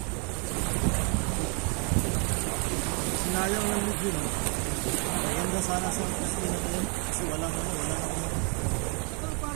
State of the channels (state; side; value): quieter; left; 35.7 dB